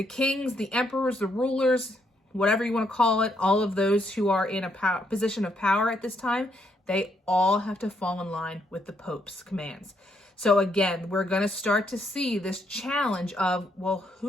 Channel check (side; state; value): both; normal; correlation 0.75